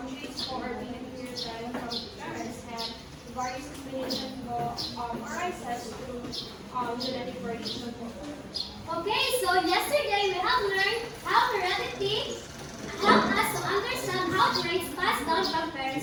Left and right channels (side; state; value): both; identical; correlation 1.00